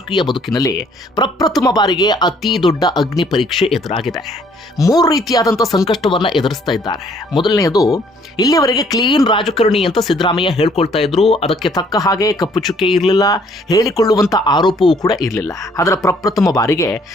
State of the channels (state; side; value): normal; both; correlation 0.62